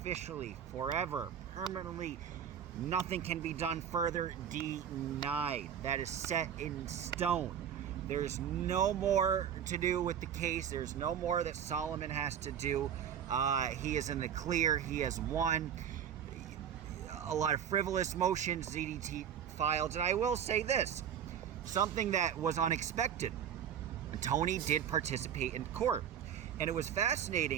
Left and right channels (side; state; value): left; quieter; 8.8 dB